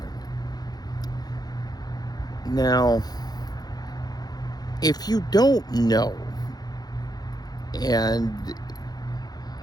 Now, if you don't know, and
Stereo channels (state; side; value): late; right; 0.19 ms